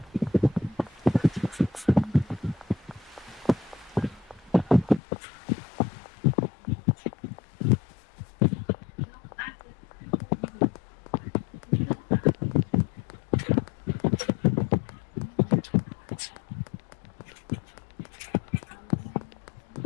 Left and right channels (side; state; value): right; drops out; at 5.0 s